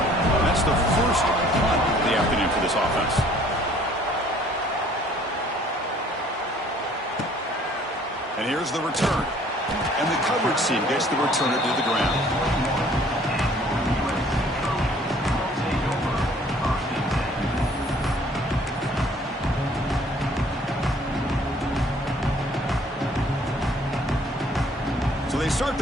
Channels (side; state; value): both; normal; correlation 0.57